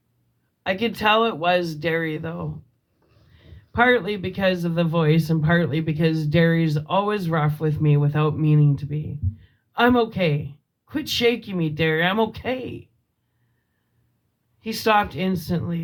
I could tell it was Derry though. Partly because of the voice and partly because Derry's always rough with me without meaning to be. "I'm okay. Quit shaking me, Derry. I'm okay." He stopped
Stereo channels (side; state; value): both; identical; correlation 1.00